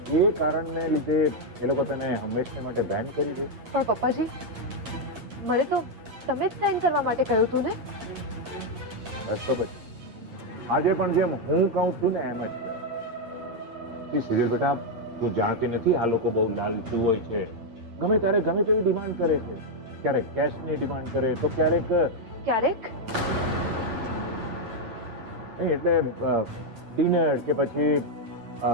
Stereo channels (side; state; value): left; late; 8.8 ms